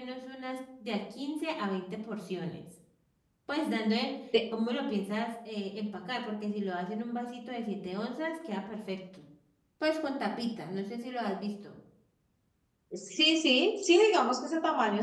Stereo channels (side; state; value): both; identical; correlation 1.00